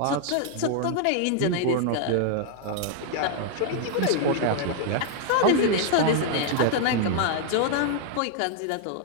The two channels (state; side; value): different; both; correlation 0.00